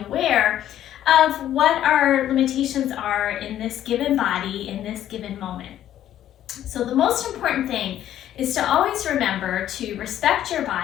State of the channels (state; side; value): quieter; right; 11.8 dB